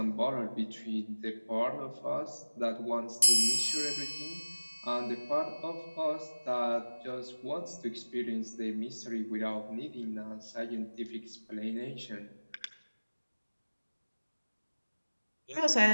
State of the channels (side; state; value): both; inverted; correlation -1.00